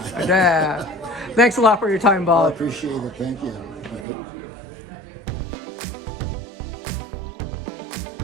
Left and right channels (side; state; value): left; drops out; at 4.0 s